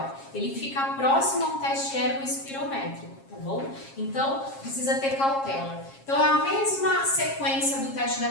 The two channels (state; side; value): late; right; 7.4 ms